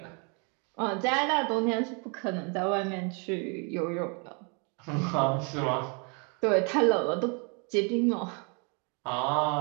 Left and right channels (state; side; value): quieter; left; 35.3 dB